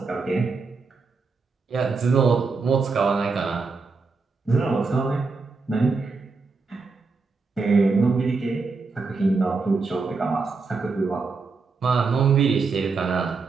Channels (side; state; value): left; quieter; 4.3 dB